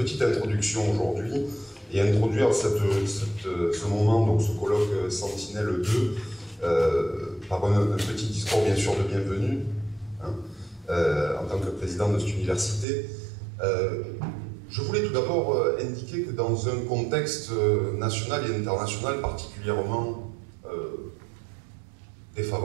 introduction aujourd'hui et introduire ce moment, donc ce colloque Sentinelle 2, par un petit discours bien sûr de bienvenue, en tant que président de cette université. Je voulais tout d'abord indiquer que dans un contexte national et international particulièrement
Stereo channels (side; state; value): left; drops out; at 12.9 s